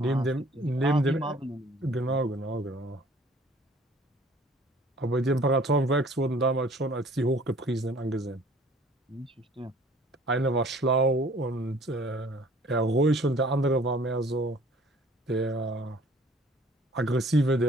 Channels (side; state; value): both; normal; correlation 0.54